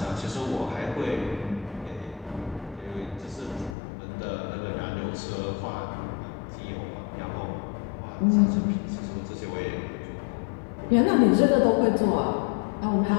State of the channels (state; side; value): drops out; right; at 3.8 s